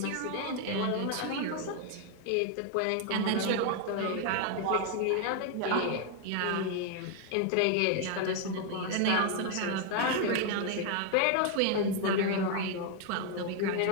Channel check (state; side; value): different; both; correlation 0.00